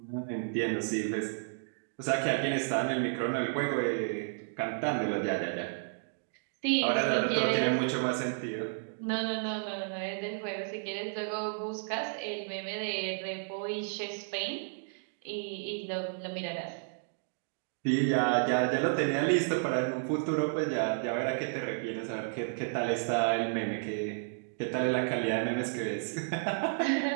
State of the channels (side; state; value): left; silent; digital silence